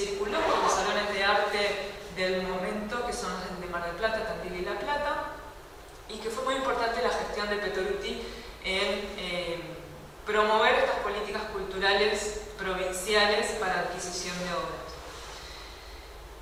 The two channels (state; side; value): identical; both; correlation 1.00